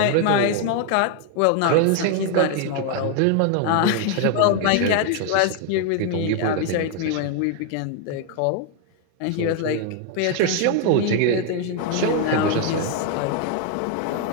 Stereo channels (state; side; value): different; both; correlation 0.00